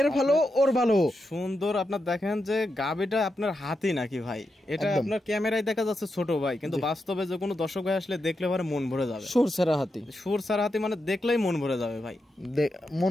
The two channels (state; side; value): normal; both; correlation 0.86